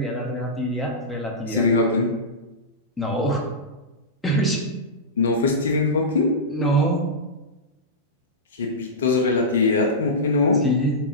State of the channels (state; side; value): normal; both; correlation -0.14